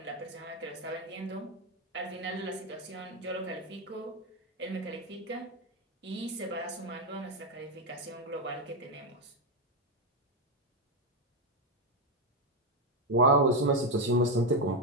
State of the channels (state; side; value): normal; both; correlation 0.06